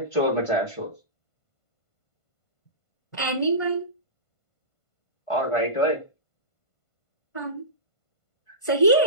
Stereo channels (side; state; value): right; late; 1.5 ms